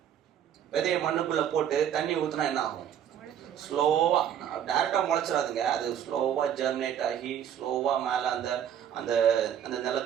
விதையை மண்ணுக்குள்ள போட்டு தண்ணி ஊற்றினா என்ன ஆகும்? ஸ்லோவா, டைரக்டா முளைச்சிடாதுங்க. அது ஸ்லோவா ஜெர்மினேட் ஆகி ஸ்லோவா மேலே அந்த அந்த அந்த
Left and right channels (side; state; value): left; quieter; 9.5 dB